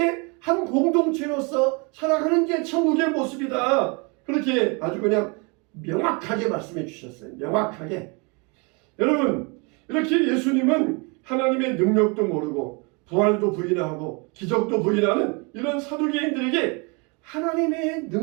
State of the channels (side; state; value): left; quieter; 31.3 dB